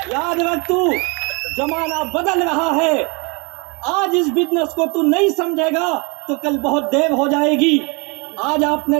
याद रख तू, जमाना बदल रहा है। आज इस बिजनेस को तू नहीं समझेगा तो कल बहुत देर हो जाएगी। आज आपने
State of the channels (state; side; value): quieter; left; 30.7 dB